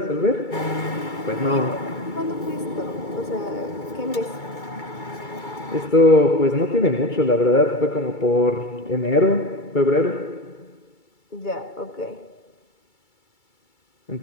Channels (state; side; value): late; right; 2.3 ms